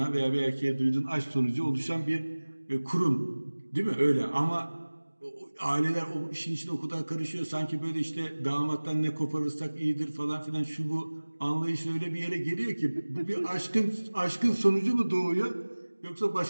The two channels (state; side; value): inverted; both; correlation -1.00